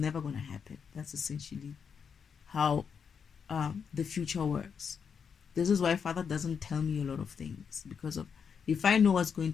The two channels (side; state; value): right; quieter; 6.6 dB